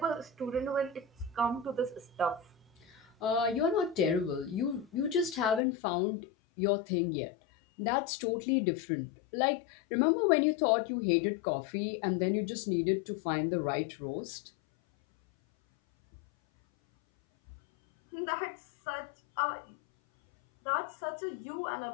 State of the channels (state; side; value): drops out; right; at 5.7 s